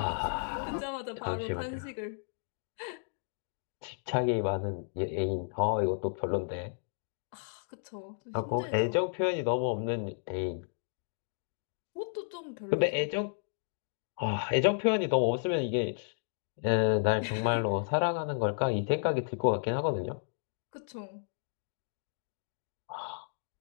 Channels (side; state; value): right; silent; digital silence